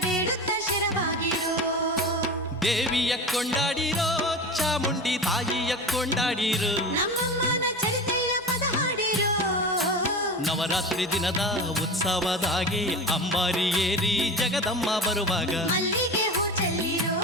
ಬೇಡುತ್ತ ಶಿರವಾಗಿರೋ ದೇವಿಯ ಕೊಂಡಾಡಿರೋ ಚಾಮುಂಡಿ ತಾಯಿಯ ಕೊಂಡಾಡಿರೋ ನಮ್ಮಮ್ಮನ ಚರಿತೆಯ ಪದ ಹಾಡಿರೋ ನವರಾತ್ರಿ ದಿನದ ಉತ್ಸವದಾಗೆ ಅಂಬಾರಿ ಏರಿ ಜಗದಮ್ಮ ಬರುವಾಗ ಮಲ್ಲಿಗೆ ಹೂ ಚೆಲ್ಲಿರೋ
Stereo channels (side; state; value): both; normal; correlation 0.29